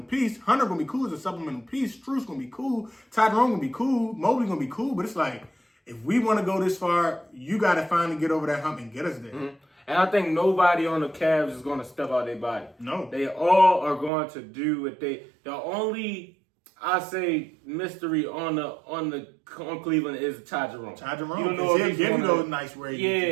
piece. Hunter going to be cool as a supplemental piece. Strus going to be cool. Ty Jerome going to be cool. Mobley going to be cool. But it's like, if we want to go this far, you got to finally get over that hump and get us there. And I think nobody on the Cavs is going to step out their body. No. They all are going to do what the only, I say, mystery on Cleveland is Ty Jerome. Ty Jerome. You don't know if he'll give you those nice ratings.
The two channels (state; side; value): drops out; left; at 14.1 s